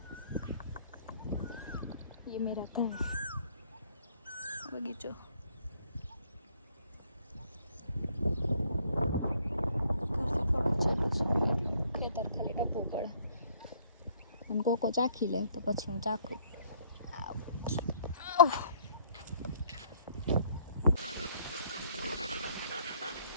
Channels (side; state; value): both; inverted; correlation -0.63